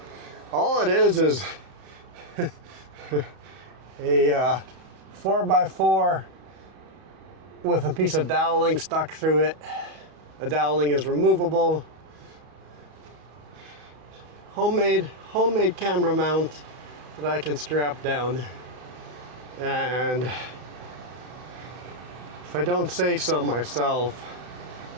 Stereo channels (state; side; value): late; left; 31 ms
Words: All it is a 4x4 with a piece of doweling stuck through it. The doweling is removable. Homemade camera mount that I can strap down. And if I don't say so myself,